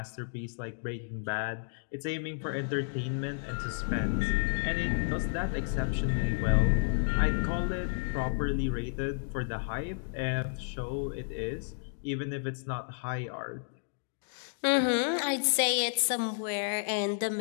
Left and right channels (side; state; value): right; silent; digital silence